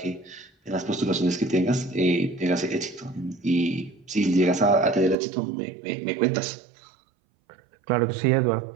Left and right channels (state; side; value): drops out; left; at 5.2 s